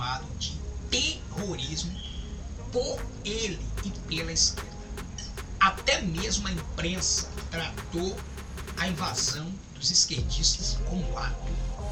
de terrorismo por ele e pela esquerda. Até mesmo a imprensa tratou a invasão dos esquerdistas como ato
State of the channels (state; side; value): identical; both; correlation 1.00